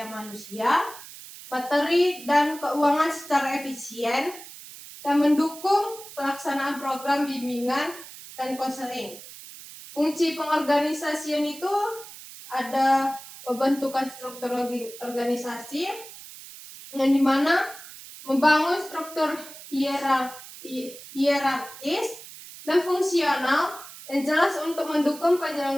manusia, materi, dan keuangan secara efisien dan mendukung pelaksanaan program bimbingan dan konseling. Fungsi pengorganisasian itu ada pembentukan struktur organisasi yang dimana membangun struktur hierarkis dan fungsional yang jelas untuk mendukung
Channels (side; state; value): right; noise; hiss, 15 dB below the sound